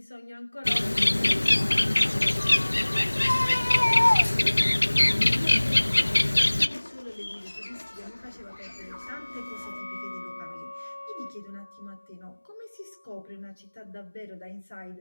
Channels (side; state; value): both; inverted; correlation -1.00